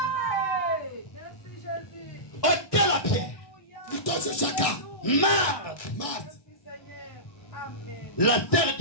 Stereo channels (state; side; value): late; right; 1.6 ms